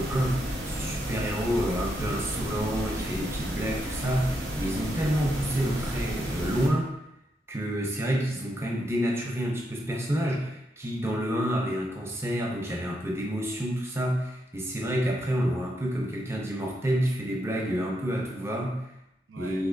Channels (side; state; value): both; normal; correlation 0.81